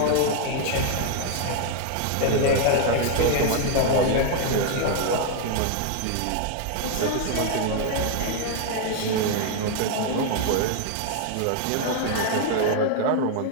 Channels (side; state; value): both; different; correlation 0.00